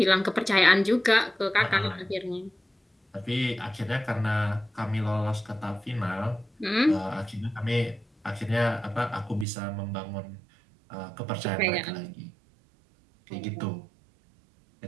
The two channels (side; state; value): left; drops out; at 9.5 s